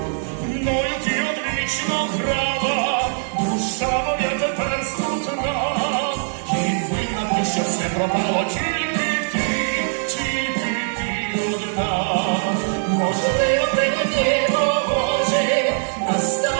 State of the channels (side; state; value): left; silent; 65 dB below the other